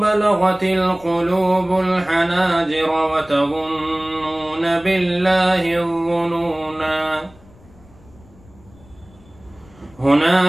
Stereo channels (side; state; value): left; noise; rumble, 26 dB below the sound